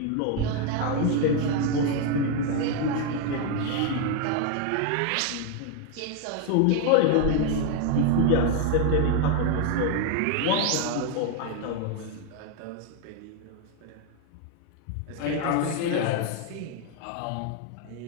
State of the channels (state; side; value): different; both; correlation 0.01